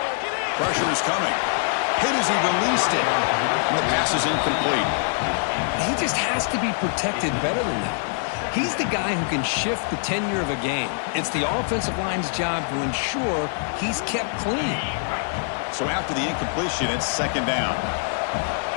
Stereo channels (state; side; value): silent; right; digital silence